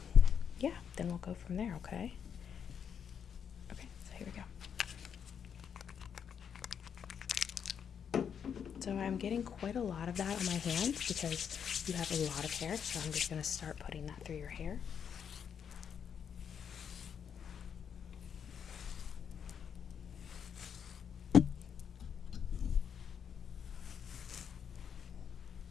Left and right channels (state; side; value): quieter; right; 7.7 dB